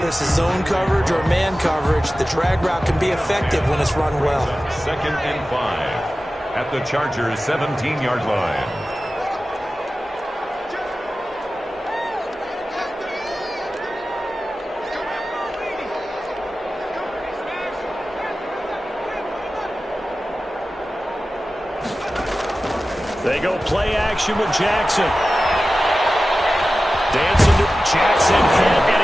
it's a zone coverage or man coverage, the drag route can be effective when it's run well. 2nd and 5. At the Chargers' 17-yard line. They go play action with Jackson. Dancing to Jackson,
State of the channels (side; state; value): both; normal; correlation 0.95